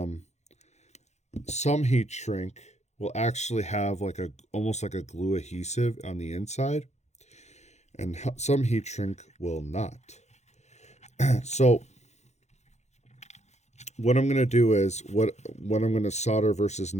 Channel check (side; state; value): right; late; 0.33 ms